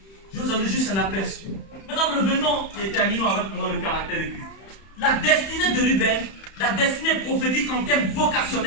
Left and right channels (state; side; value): late; right; 31 ms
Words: Je vous en ai juste un aperçu. Maintenant, revenons et terminons avec le caractère de Christ. La destinée de Ruben, la destinée prophétique en termes